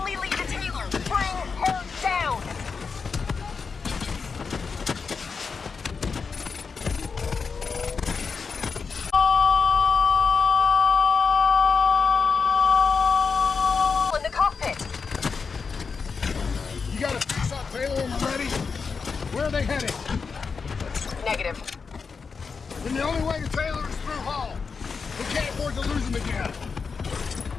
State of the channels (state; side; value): quieter; right; 5.3 dB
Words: lead to Taylor. Bring her down. In the cockpit. You got a fix on Taylor and Moretti? Where are they heading? Negative. Then the only way to Taylor is through Hall. We can't afford to lose him again.